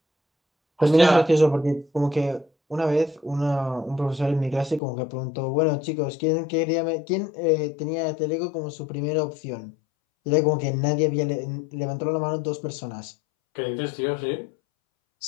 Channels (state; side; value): drops out; right; at 4.8 s